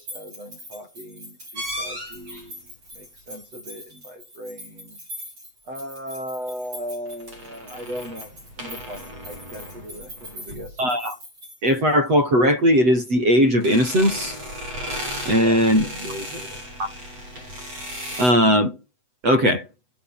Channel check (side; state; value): left; late; 8.0 ms